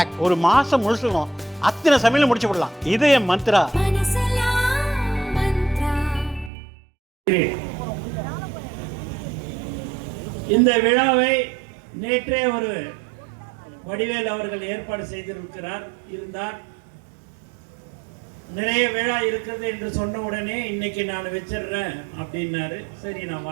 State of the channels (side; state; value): left; drops out; at 6.5 s